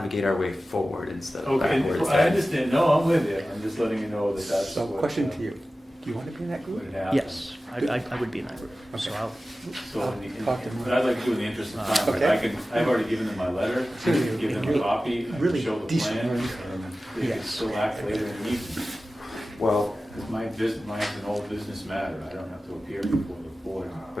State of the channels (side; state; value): both; normal; correlation 0.95